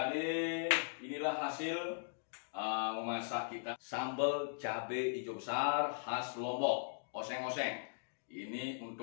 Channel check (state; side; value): silent; right; digital silence